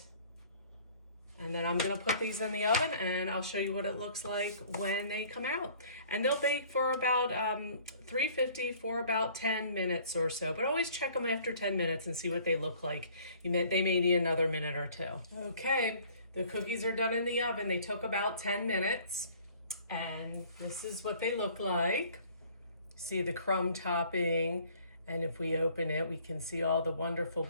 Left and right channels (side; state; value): both; inverted; correlation -0.54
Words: And then I'm gonna put these in the oven and I'll show you what it looks like when they come out. And they'll bake for about 350 for about 10 minutes or so, but always check them after 10 minutes and see what they look like. They may need another minute or two. Okay, the cookies are done in the oven. They took about 10 minutes and this is what they look like. See the crumb topping, and if we open it, we can see all the wonderful